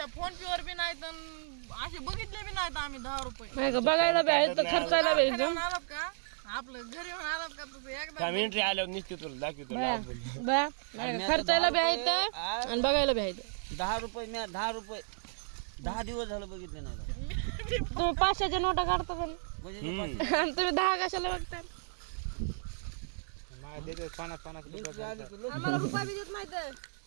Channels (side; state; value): left; silent; 55 dB below the other